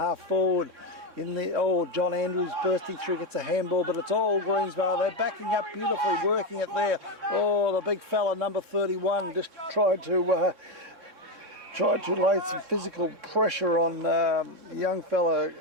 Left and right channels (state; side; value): late; left; 3.6 ms